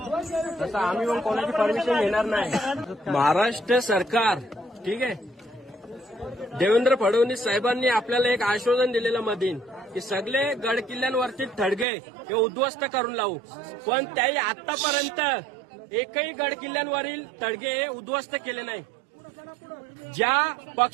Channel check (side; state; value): left; drops out; at 11.9 s